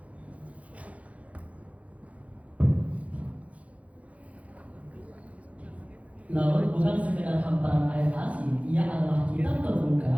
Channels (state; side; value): late; left; 0.066 ms